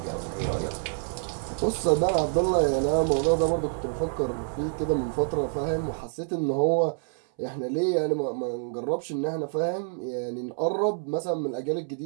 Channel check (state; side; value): silent; left; 60 dB below the other